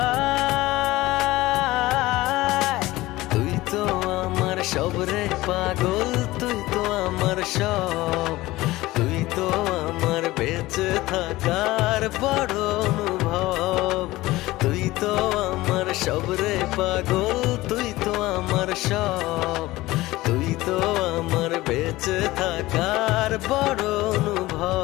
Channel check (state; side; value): quieter; right; 18.4 dB